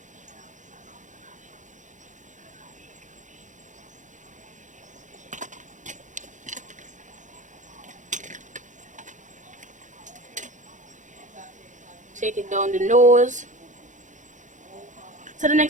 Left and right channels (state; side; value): late; left; 0.36 ms